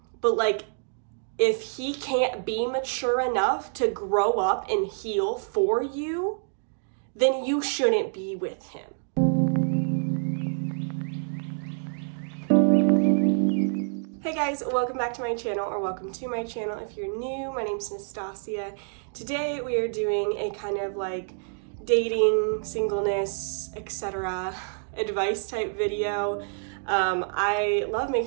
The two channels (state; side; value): silent; left; digital silence